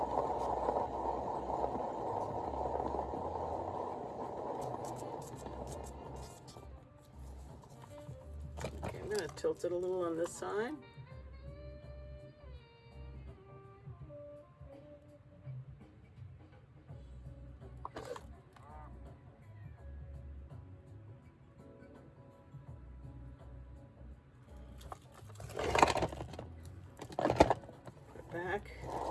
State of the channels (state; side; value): identical; both; correlation 1.00